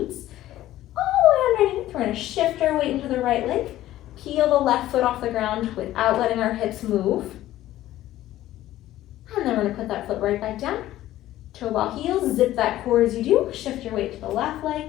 All the way underneath, we're gonna shift our weight into the right leg. Peel the left foot off the ground without letting our hips move. we're gonna put that foot right back down. Toe ball heels, zip that core as you do. Shift your weight to the left leg.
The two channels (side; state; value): right; quieter; 14.4 dB